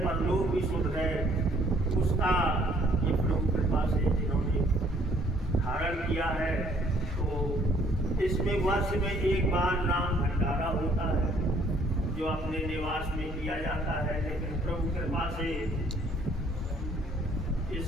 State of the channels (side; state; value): both; normal; correlation 0.62